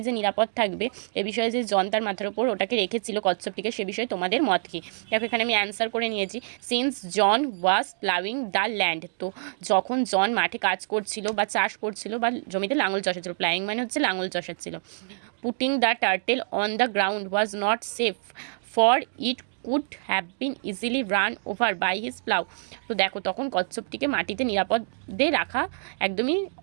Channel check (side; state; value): left; silent; digital silence